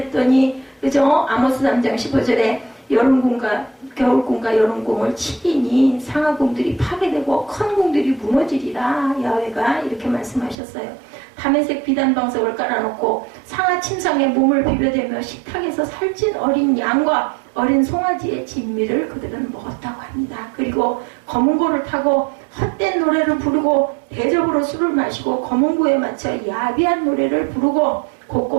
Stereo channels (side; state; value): left; drops out; at 10.6 s